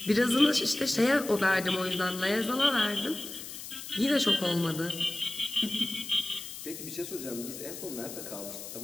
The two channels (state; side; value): noise; left; hiss, 11 dB below the sound